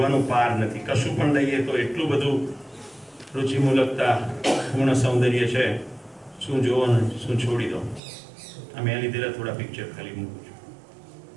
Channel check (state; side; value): drops out; left; at 8.0 s